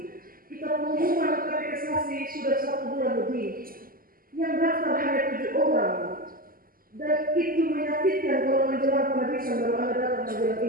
Kita pengumuman katekisasi sudah 1 bulan lebih. Yang daftar hanya 7 orang. Dan itu menyakitkan kalau menjelang penghabisan baru Anda datang menjelang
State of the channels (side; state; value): left; late; 0.42 ms